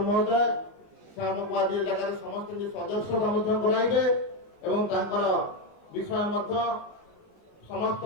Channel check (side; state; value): right; late; 19 ms